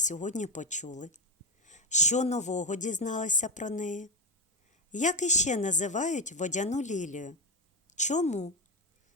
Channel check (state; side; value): normal; both; correlation 0.10